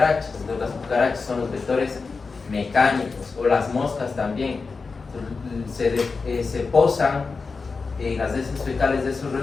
Entonces las cucarachas son los vectores mecánicos, o las moscas también. Se posan en las heces fecales de esos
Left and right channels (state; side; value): quieter; right; 4.5 dB